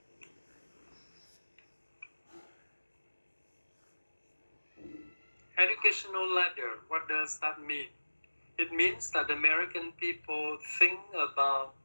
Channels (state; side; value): inverted; both; correlation -1.00